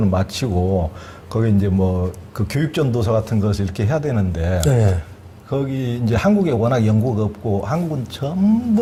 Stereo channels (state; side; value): identical; both; correlation 1.00